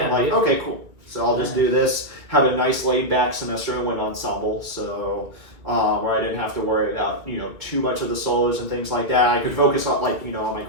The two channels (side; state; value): left; late; 2.5 ms